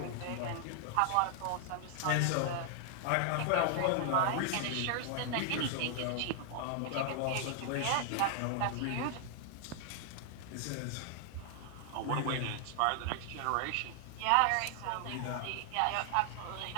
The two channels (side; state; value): both; different; correlation 0.00